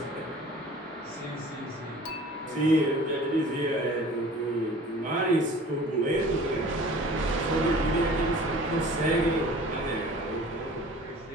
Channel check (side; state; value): both; normal; correlation 0.45